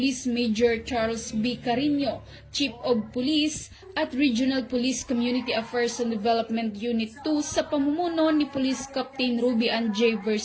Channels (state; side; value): identical; both; correlation 1.00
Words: Major Charles B. Carino, Chief of Police, at Regional Police Community Affairs and Development Unit 2 sa pamumuno ni Police Captain Ruby Ann J.